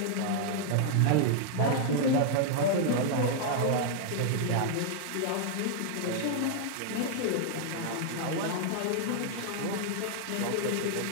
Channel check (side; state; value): both; different; correlation 0.00